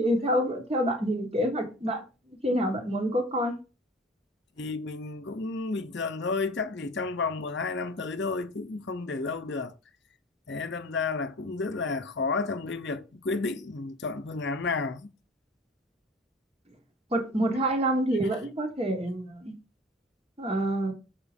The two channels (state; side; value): normal; both; correlation 0.42